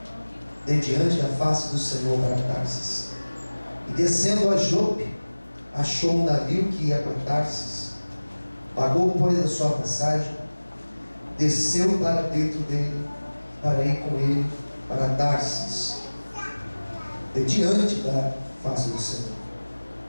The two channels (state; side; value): inverted; both; correlation -1.00